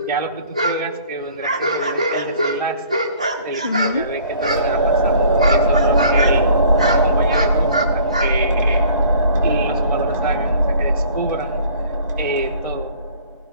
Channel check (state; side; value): inverted; both; correlation -0.52